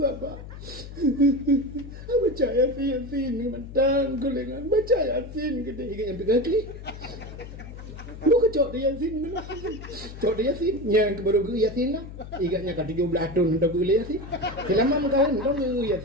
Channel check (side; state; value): left; noise; hum, 12 dB below the sound